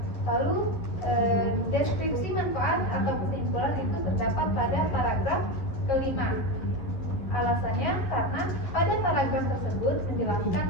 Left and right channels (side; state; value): right; late; 10 ms